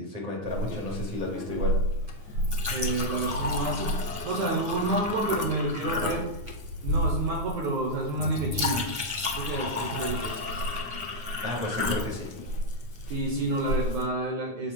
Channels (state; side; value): late; left; 9.6 ms